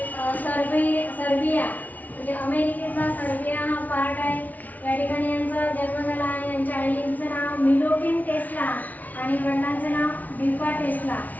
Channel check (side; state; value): right; late; 0.076 ms